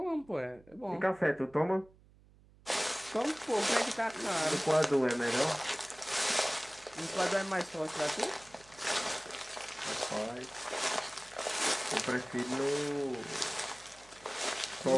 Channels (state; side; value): noise; right; hum, 26 dB below the sound